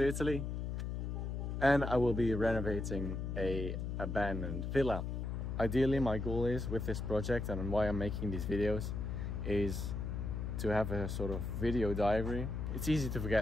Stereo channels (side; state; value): left; noise; hum, 3 dB below the sound